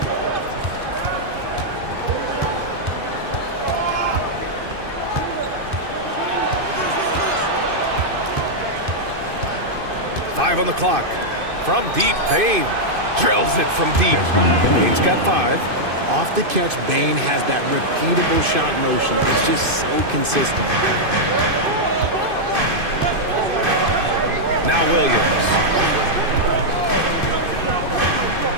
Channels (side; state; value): left; late; 2.5 ms